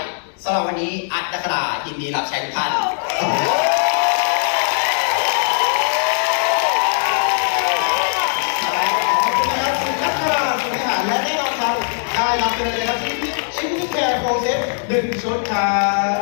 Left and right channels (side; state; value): right; silent; digital silence